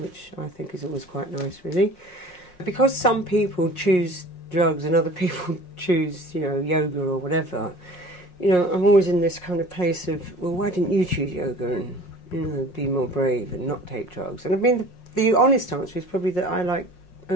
I think is always quite nice, really. Because some people choose drugs and other people choose, you know, yoga or whatever, you know, I'm always in this kind of place of, well, why didn't you choose yoga and, you know, be more brave and not take drugs? And I mean, the honest answer is probably that I like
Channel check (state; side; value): late; right; 5.6 ms